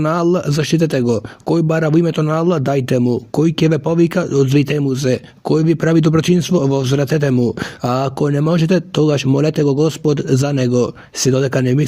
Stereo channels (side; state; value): both; identical; correlation 1.00